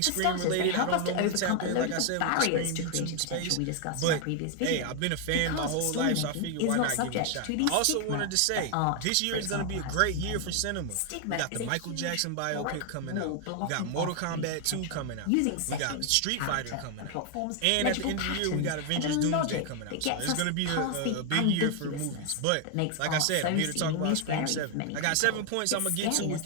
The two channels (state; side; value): different; both; correlation 0.00